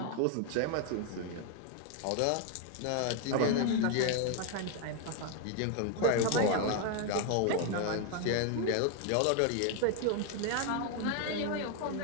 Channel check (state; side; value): different; both; correlation 0.01